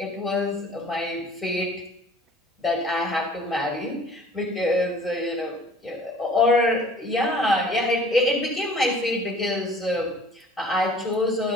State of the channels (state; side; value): normal; both; correlation 0.50